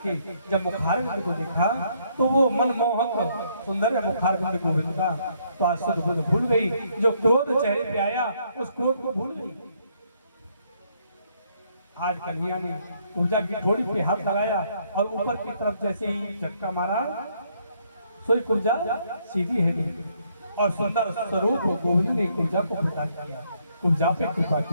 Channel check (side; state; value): both; inverted; correlation -0.70